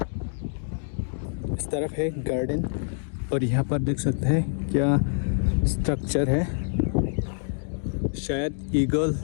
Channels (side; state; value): right; silent; digital silence